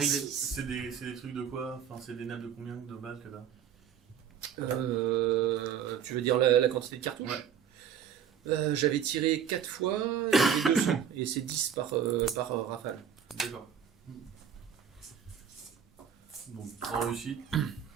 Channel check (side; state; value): left; quieter; 8.2 dB